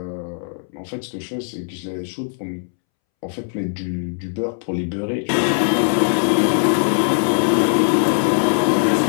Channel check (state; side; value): silent; right; 66 dB below the other